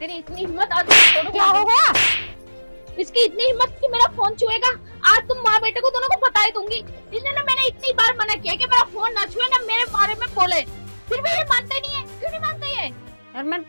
इतनी हिम्मत, आज क्या हो गया? इसकी इतनी हिम्मत कि मेरा फोन छुएगा। आज तुम माँ बेटे को दोनों को बता ही दूंगी। इसने ना, मैंने इतनी बार मना किया कि मेरा फोन ना छुए, ना मेरे बारे में बोले, फिर भी ये मानते नहीं है। क्यों नहीं मानते ये? यार मैंने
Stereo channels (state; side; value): inverted; both; correlation -1.00